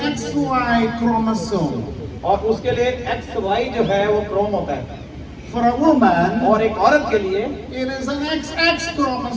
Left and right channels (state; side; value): identical; both; correlation 1.00